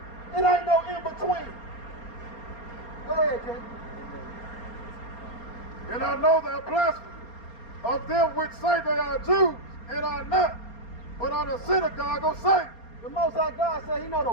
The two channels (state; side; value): late; right; 4.3 ms